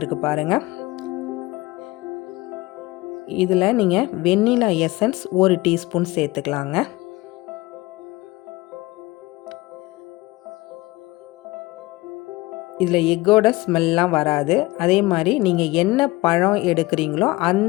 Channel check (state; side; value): quieter; right; 20.9 dB